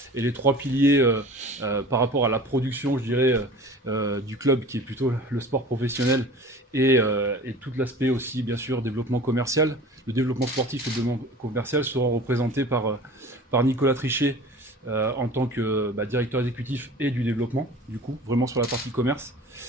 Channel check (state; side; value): normal; both; correlation 0.41